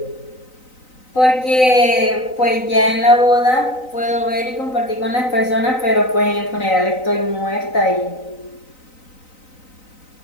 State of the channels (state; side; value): late; right; 3.9 ms